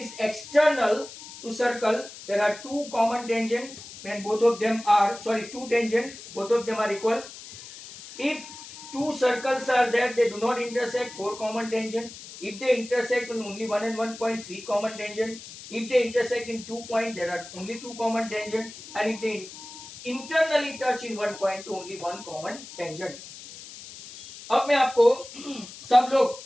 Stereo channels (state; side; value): noise; left; hiss, 15 dB below the sound